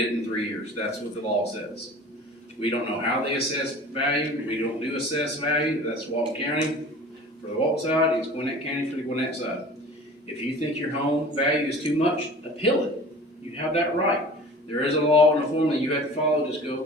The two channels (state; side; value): normal; both; correlation 0.41